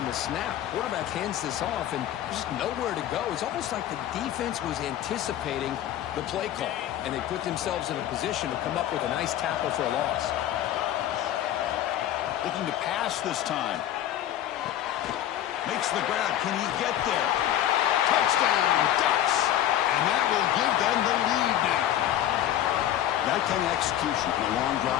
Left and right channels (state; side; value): quieter; right; 12.0 dB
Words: the snap. Quarterback hands this off, and there's just nowhere to go. It's almost like the defense was anticipating the play call, and they put themselves in a position to come up with a nice tackle for a loss. Looking to pass this time. Makes the grab. Can he get there? Touchdown, Ducks! And that will give them the lead now. That kind of execution in a long